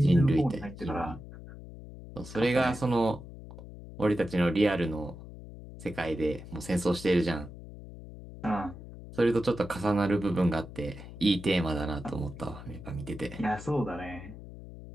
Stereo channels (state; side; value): noise; left; hum, 14 dB below the sound